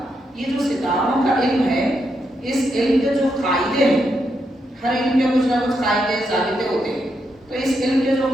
یہ جو ستاروں کا علم ہے، اس علم کے جو قاعدے ہیں، ہر علم کے کچھ نہ کچھ قاعدے ضابطے ہوتے ہیں، تو اس علم کے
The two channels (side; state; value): both; normal; correlation 0.81